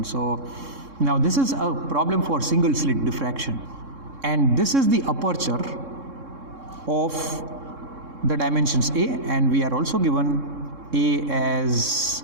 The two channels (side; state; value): left; late; 3.7 ms